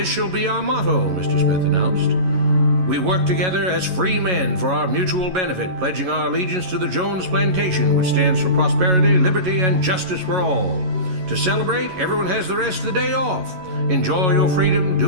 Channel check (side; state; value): left; late; 11 ms